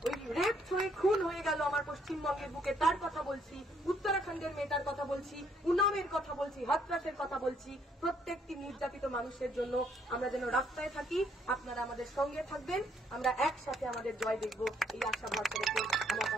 ওই রেপ হয়ে খুন হয়ে গেল আমার পশ্চিমবঙ্গের বুকে, তার কথা বলছি, উত্তরাখণ্ডের মেয়েটার কথা বলছি, উনামের কথা বলছি, হাতরাসের কথা বলছি। প্রত্যেকটি নির্যাতিত মানুষের জন্য আমরা যেন রাস্তায় থাকি, আপনারা আমাদের সঙ্গে থাকবেন, আমরা একসাথে আমাদের জয় দেখব, এই আশা ভরসা রেখে আমার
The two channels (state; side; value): normal; both; correlation 0.68